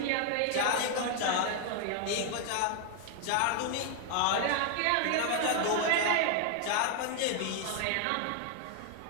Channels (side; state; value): both; different; correlation 0.00